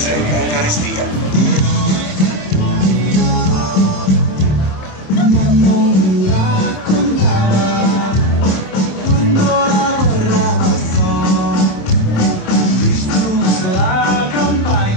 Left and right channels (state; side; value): late; right; 27 ms